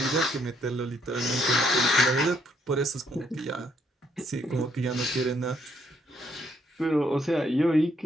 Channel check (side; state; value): both; normal; correlation 0.71